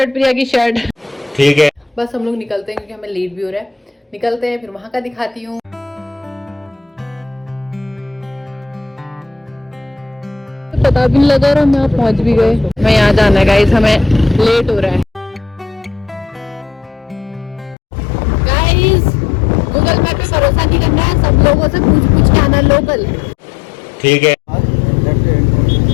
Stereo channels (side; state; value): right; drops out; at 17.8 s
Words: प्रिया की शर्ट। ठीक है, बस हम लोग निकलते हैं क्योंकि हमें लेट भी हो रहा है। निकलते हैं, फिर वहां का दिखाती हूँ। पता भी नहीं लगा और हम यहाँ पहुंच भी गए। मैं यहाँ जाना है गाइस, हमें लेट हो रहा है। गाइस गूगल मैप पे भरोसा नहीं करना है, सब लोगों से पूछ के आना लोकल। ठीक है,